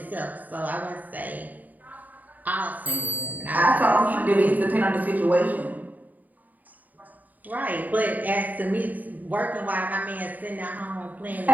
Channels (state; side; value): late; left; 0.081 ms